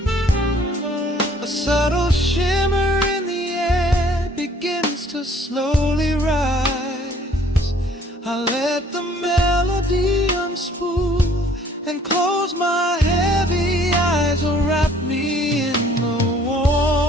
A subtle shimmer in the air begins to slowly rise. I let the melody unspool and close my heavy eyes, or wrap me in the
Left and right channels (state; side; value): normal; both; correlation 0.58